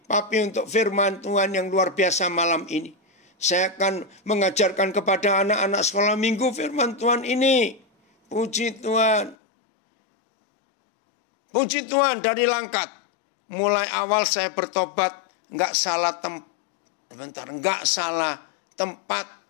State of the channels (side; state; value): right; drops out; at 9.3 s